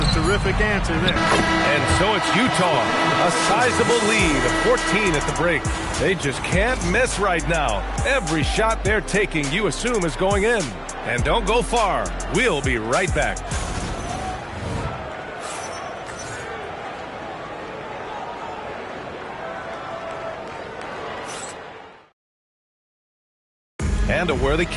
a terrific answer there. And so it's Utah. A sizable lead of 14 at the break. They just can't miss right now. Every shot they're taking, you assume, is going in. And don't go far. We'll be right back. And a worthy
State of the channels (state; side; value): identical; both; correlation 1.00